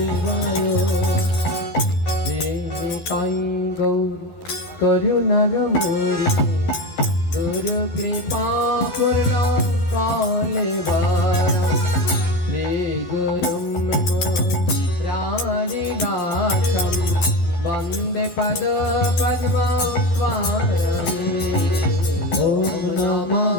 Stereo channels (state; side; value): late; right; 12 ms